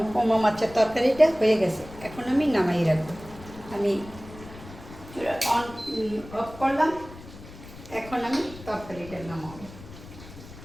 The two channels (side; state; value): left; noise; rumble, 16 dB below the sound